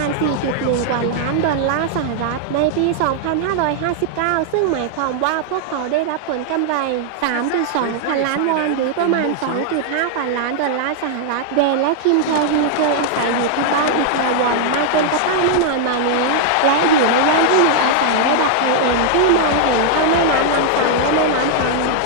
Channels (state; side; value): different; both; correlation -0.01